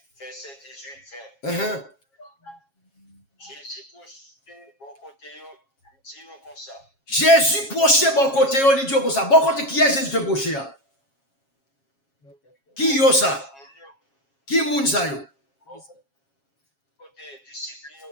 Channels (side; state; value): right; late; 7.3 ms